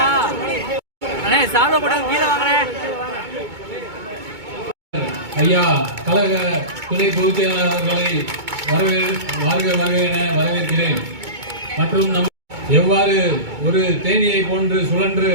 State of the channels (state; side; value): late; left; 2.2 ms